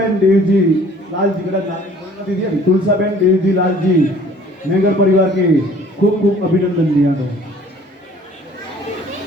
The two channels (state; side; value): normal; both; correlation 0.53